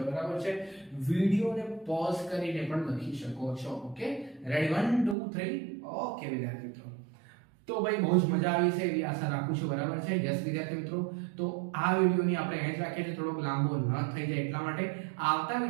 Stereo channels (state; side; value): drops out; left; at 5.2 s